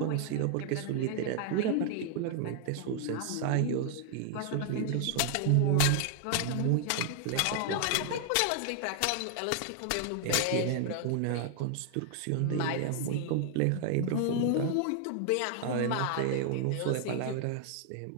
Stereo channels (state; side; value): different; both; correlation 0.00